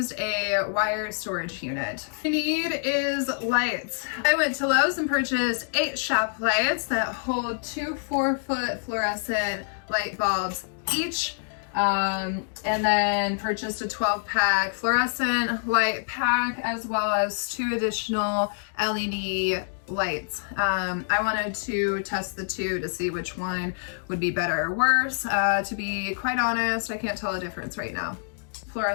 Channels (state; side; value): silent; right; digital silence